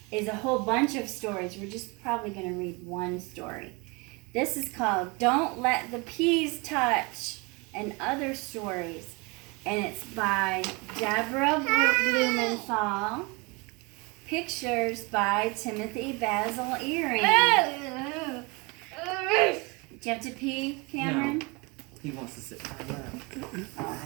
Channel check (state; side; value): quieter; left; 28.0 dB